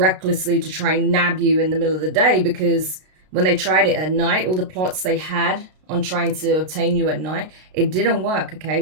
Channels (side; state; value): left; late; 32 ms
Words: to try and nab you in the middle of the day, because when they tried it at night, all the plots they had on trying to obtain you at night, it didn't work,